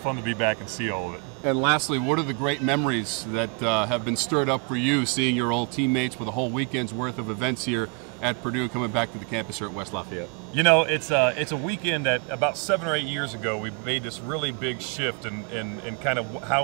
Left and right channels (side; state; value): left; quieter; 34.6 dB